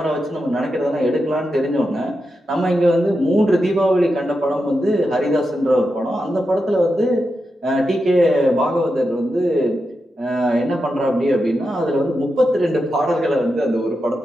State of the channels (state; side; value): normal; both; correlation 0.88